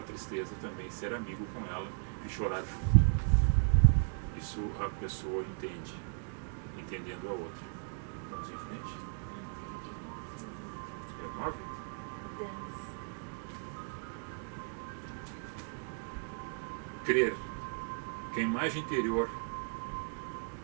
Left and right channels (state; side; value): silent; left; 54 dB below the other